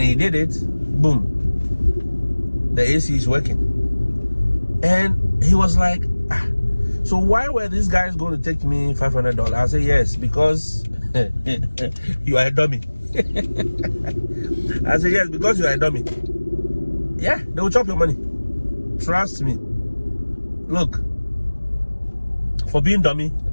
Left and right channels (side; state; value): both; inverted; correlation -1.00